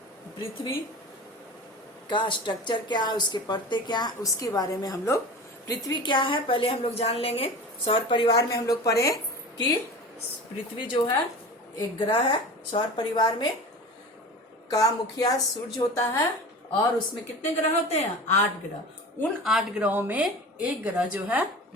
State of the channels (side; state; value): both; normal; correlation 0.34